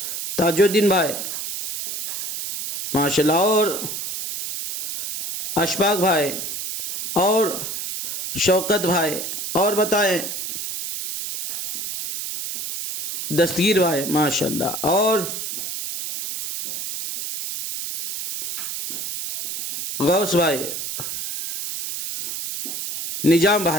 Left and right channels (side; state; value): right; noise; hiss, 6 dB below the sound